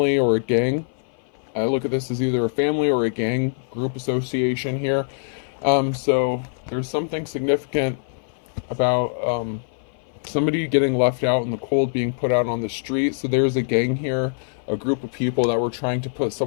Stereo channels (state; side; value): silent; right; 58 dB below the other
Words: or a gang. I look at this as either a family or a gang group association here. So there's something significant about somebody getting left out in the cold, being put out on the street. So there's a gang here, a group of people that were trying to put